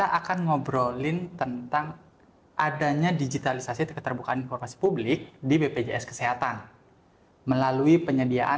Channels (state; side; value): identical; both; correlation 1.00